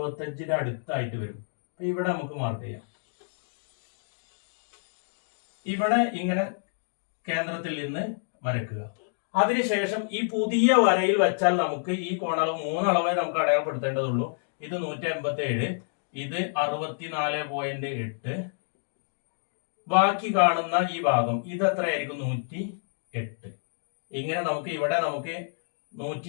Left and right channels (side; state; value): right; silent; digital silence